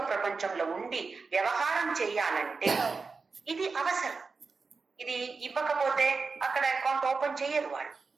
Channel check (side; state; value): left; quieter; 4.5 dB